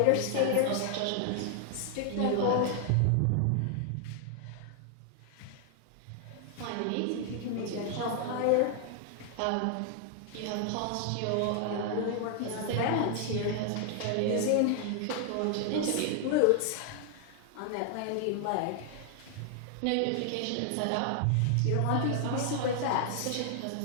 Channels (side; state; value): both; different; correlation 0.00